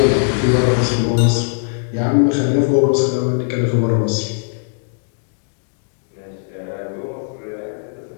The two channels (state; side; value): silent; right; digital silence